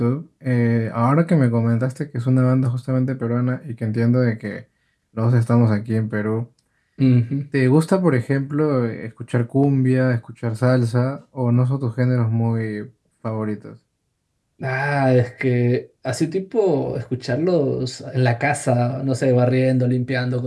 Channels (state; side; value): identical; both; correlation 1.00